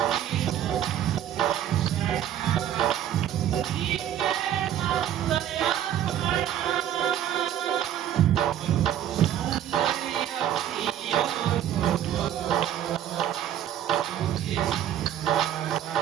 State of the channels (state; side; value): quieter; left; 10.8 dB